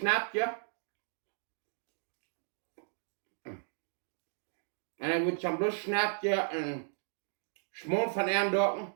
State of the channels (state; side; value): silent; left; digital silence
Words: Und dann wird zum Schluss Schnetje und Schmol von ihren Docken